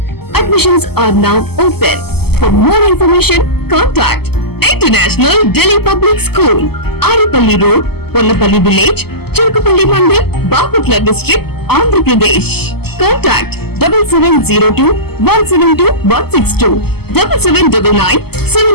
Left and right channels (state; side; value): late; right; 0.96 ms